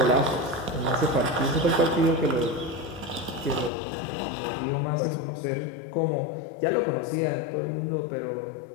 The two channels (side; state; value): right; drops out; at 3.7 s